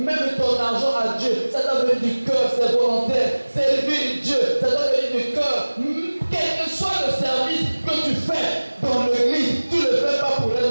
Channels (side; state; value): both; inverted; correlation -1.00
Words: ton argent à Dieu, ça doit venir du cœur, c'est volontaire. Servir Dieu, ça doit venir du cœur. Quel que soit le service que tu fais dans l'église, tu ne le fais pas pour un